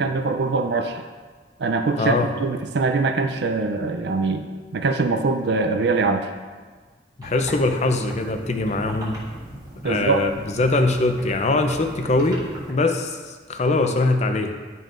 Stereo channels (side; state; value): both; normal; correlation 0.36